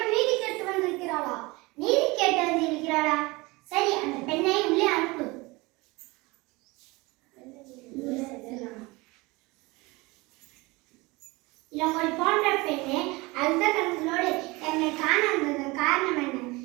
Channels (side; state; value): left; quieter; 23.6 dB